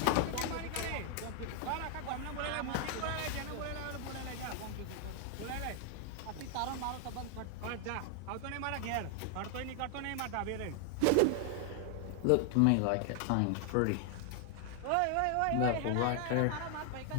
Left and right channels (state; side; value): different; both; correlation 0.00